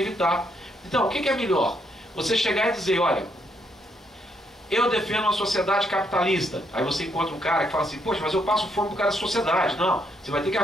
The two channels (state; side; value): normal; both; correlation 0.75